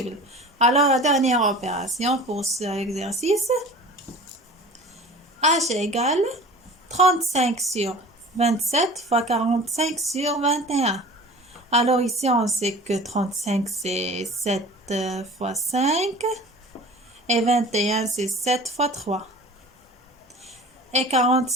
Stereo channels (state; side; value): normal; both; correlation 0.41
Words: Alors, la dernière opération pour cet exercice. H égale 35 sur 27 fois 45 sur 21. Alors ici, on sait que 35 c'est 7 fois 5 et 21 c'est 7 fois 3. Et